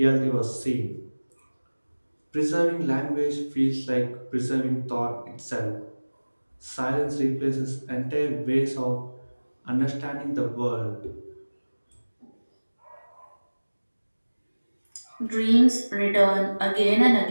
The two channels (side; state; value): both; inverted; correlation -1.00